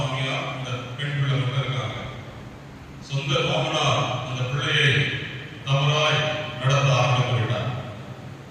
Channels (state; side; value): identical; both; correlation 1.00